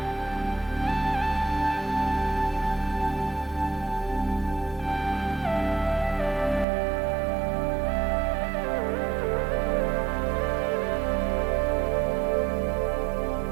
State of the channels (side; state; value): left; drops out; at 6.7 s